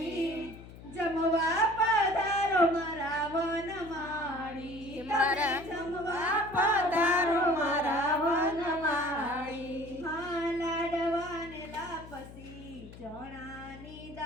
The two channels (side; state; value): left; noise; hum, 16 dB below the sound